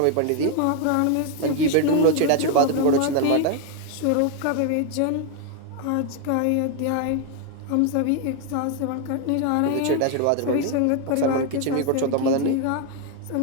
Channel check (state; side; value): different; both; correlation 0.00